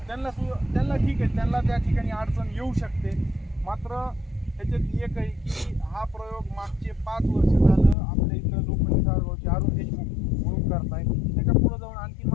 त्यांना ठीक आहे, त्यांना त्या ठिकाणी अडचण येऊ शकते. मात्र त्याच्यात एक आहे की हा प्रयोग मागचे 5 वर्ष झालं आपल्या इथं लोखंडी सारगावचे अरुण देशमुख म्हणून करताय. त्याच्या पुढे जाऊन आणखी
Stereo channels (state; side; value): drops out; right; at 8.0 s